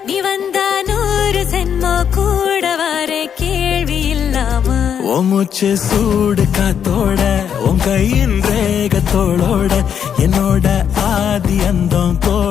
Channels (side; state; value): right; quieter; 8.2 dB